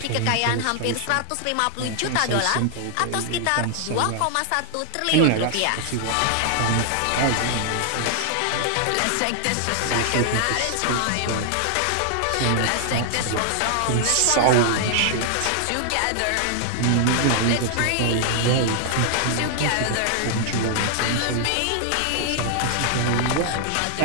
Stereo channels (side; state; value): both; different; correlation 0.00